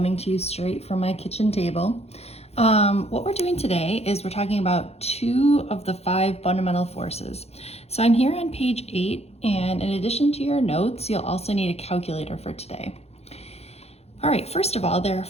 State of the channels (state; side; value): late; right; 0.30 ms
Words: to you straight from my kitchen table. What we're doing today is we're talking about 2 of the 5 fundamental forces. So I'm here on page 8, and in addition to your notes, you'll also need a calculator for today. All right, first of all, there are